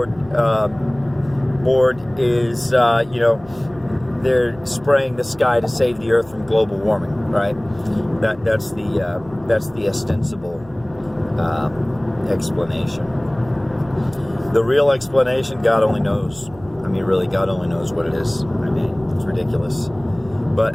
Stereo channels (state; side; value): noise; right; hum, 23 dB below the sound